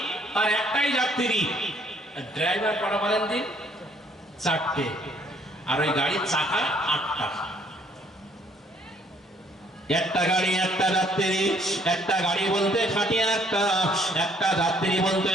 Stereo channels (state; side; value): normal; both; correlation 0.63